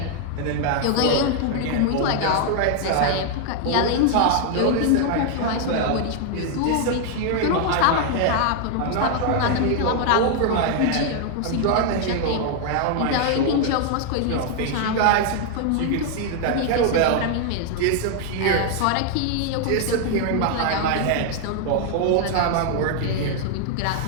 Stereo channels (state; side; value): different; both; correlation 0.00